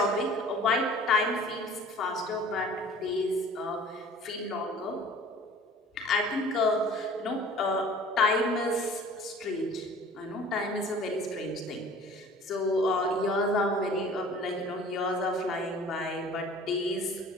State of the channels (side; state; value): both; normal; correlation 0.47